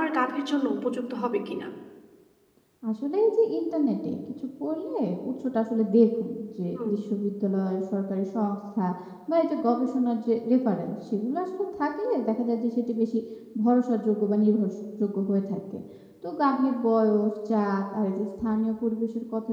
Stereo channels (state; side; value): identical; both; correlation 1.00